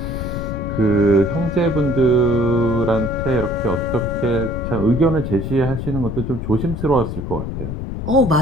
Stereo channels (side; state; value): left; noise; rumble, 5 dB below the sound